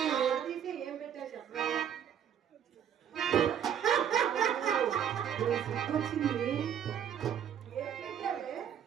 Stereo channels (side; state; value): left; quieter; 9.0 dB